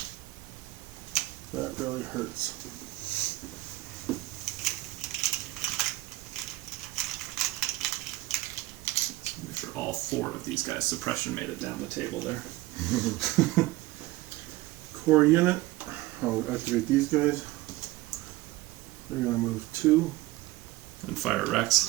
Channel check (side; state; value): left; quieter; 18.9 dB